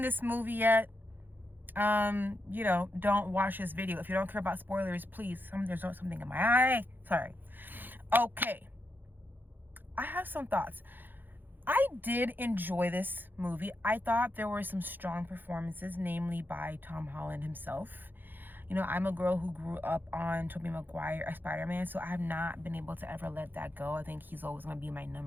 this movie yet, don't watch this video. If you don't care about spoilers, please. There's something in my eye. Sorry. Okay. I have some thoughts. I did enjoy this movie. I thought there were some strong performances, namely by Tom Holland himself. You know, I'm a girl who grew up on Tobey Maguire as Spider-Man, so I have not been able to ever let that go. I think he's always going to be my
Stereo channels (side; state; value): left; late; 0.091 ms